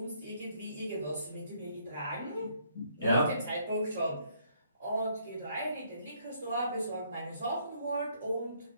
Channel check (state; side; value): inverted; both; correlation -0.67